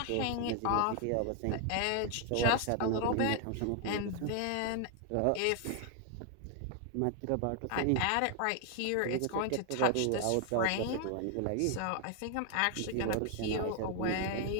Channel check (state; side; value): different; both; correlation 0.00